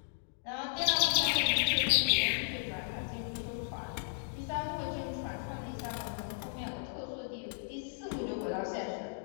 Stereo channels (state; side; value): silent; right; digital silence